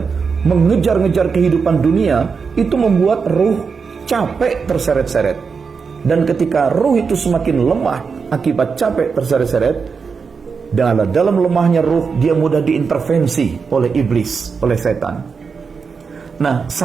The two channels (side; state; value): left; quieter; 5.4 dB